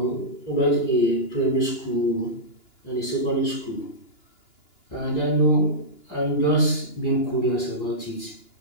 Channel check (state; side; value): late; right; 2.9 ms